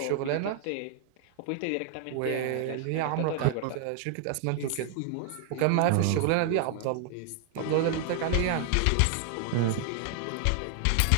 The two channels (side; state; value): both; different; correlation 0.00